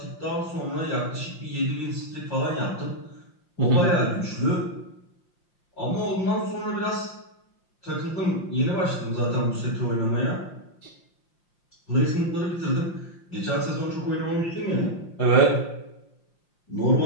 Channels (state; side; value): late; right; 5.7 ms